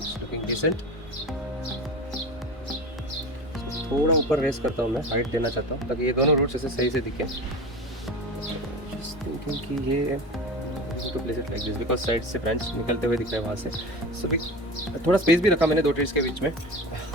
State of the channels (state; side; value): normal; both; correlation 0.31